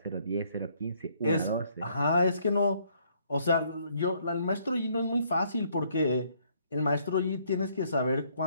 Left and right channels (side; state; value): both; inverted; correlation -0.67